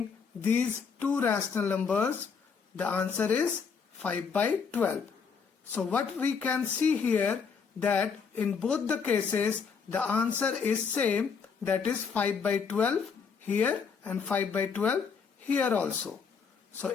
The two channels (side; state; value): right; quieter; 5.9 dB